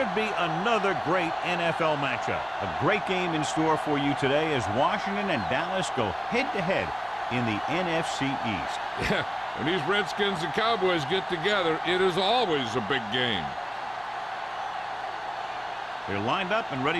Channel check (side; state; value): both; identical; correlation 1.00